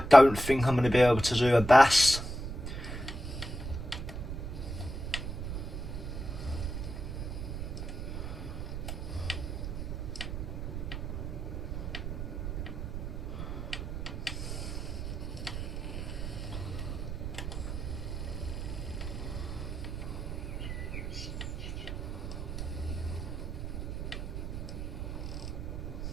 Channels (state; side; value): noise; right; rumble, 5 dB below the sound